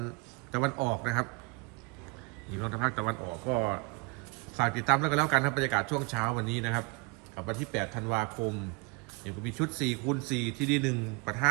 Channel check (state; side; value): quieter; left; 29.5 dB